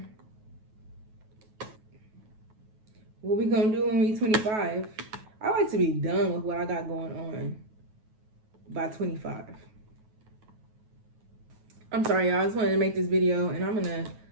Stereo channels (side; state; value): left; late; 9.3 ms